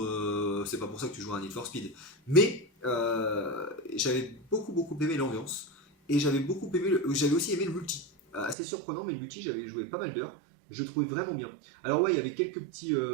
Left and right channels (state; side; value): drops out; left; at 8.6 s